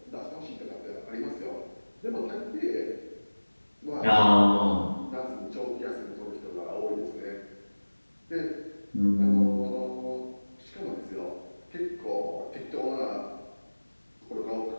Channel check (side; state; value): both; inverted; correlation -1.00